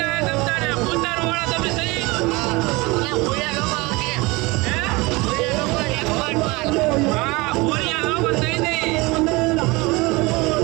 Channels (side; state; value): left; quieter; 23.8 dB